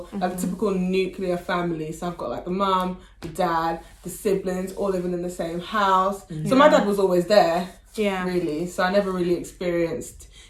the typical nuclear family. So I've got the mum, the dad, the siblings, all living in the same house. So my dad was always there. Yeah. Really. So I never really experienced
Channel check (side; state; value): both; identical; correlation 1.00